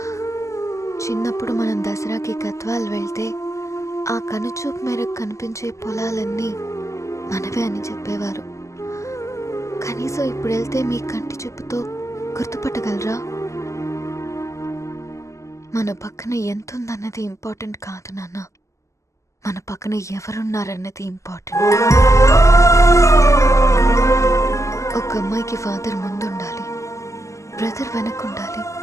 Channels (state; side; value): late; right; 0.15 ms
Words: చిన్నప్పుడు మనం దసరాకి గద్వాల్ వెళ్తే ఆ కనుచూపు మేరకు కనిపించే పొలాలన్నీ మనవే అని చెప్పేవారు. కనీసం ఇప్పుడు వెళ్తే మీ కంటి చూపుతో గుర్తుపట్టగలరా? మన పక్కన ఎంతుందన్నది ఇంపార్టెంట్ కాదు నాన్న, మన పక్కన ఎవరున్నారన్నది ఇంపార్టెంట్. ఒక అమ్మాయికి ఫాదర్ ముందుండాలి, బ్రదర్ వెనకుండాలి,